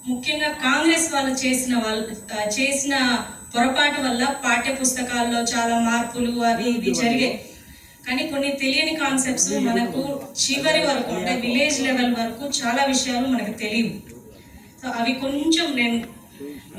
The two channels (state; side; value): identical; both; correlation 1.00